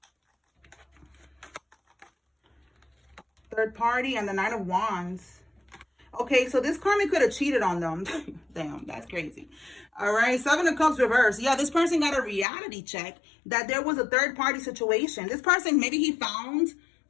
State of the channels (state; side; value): drops out; right; at 12.5 s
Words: Third party and the Knight of Wands. Okay, so this karmic could have cheated on them. Damn, that's crazy. All right, Seven of Cups reverse. Yeah, this person got a reality check that there was a third party situation. This person, maybe he found